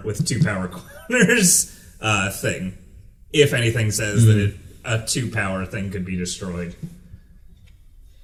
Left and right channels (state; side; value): identical; both; correlation 1.00